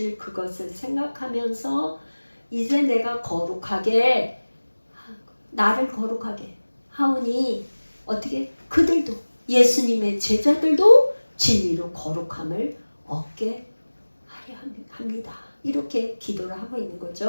그것을 생각하면서 이제 내가 나를 거룩하게 하오니 어떻게 그들도 예수님의 제자들도 진리로 거룩함을 얻게 하려 합니다. 이렇게 기도를 하고 있는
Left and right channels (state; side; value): inverted; both; correlation -1.00